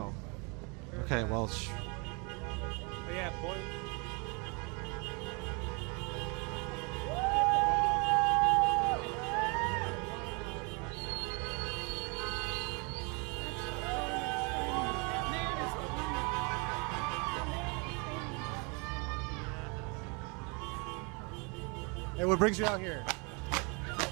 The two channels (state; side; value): quieter; left; 32.1 dB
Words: Okay, well... But yeah, boy. Hey, what brings you out here?